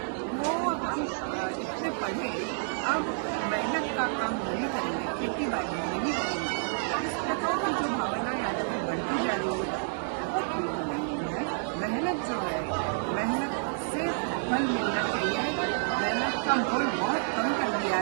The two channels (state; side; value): silent; left; digital silence